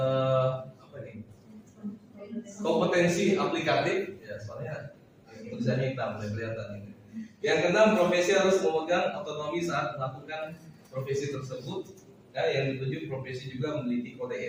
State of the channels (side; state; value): both; identical; correlation 1.00